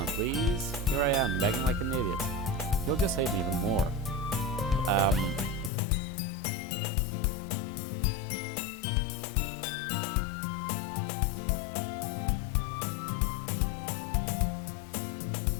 please. Here I am, begging like an idiot. He'll just hate me even more. We don't hate you. That's his way of being. He wants to get back with you, but he doesn't know how.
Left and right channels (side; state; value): right; drops out; at 5.7 s